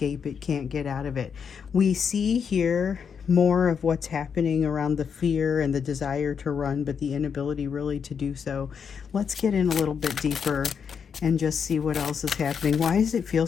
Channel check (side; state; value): right; quieter; 6.8 dB